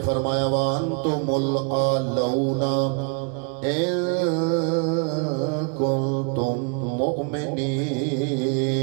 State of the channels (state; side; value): quieter; left; 36.4 dB